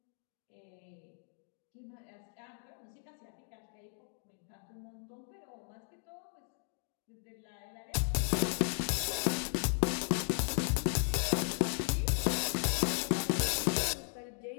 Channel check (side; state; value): right; silent; 54 dB below the other